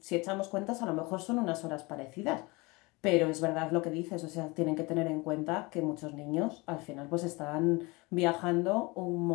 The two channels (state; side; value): quieter; right; 25.1 dB